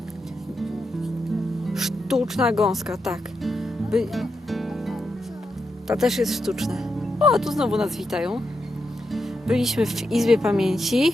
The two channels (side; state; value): both; normal; correlation 0.85